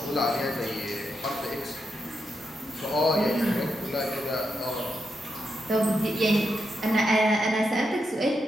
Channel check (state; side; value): normal; both; correlation 0.84